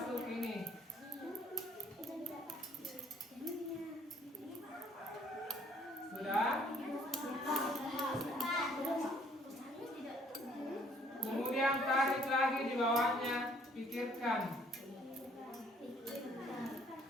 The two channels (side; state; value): both; normal; correlation 0.62